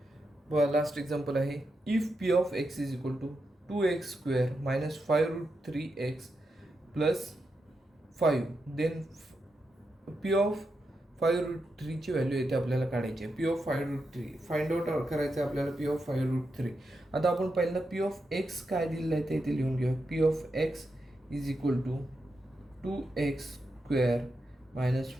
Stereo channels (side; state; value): both; normal; correlation 0.86